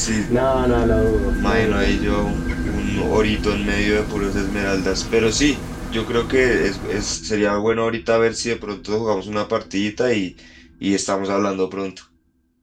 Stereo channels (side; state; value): both; identical; correlation 1.00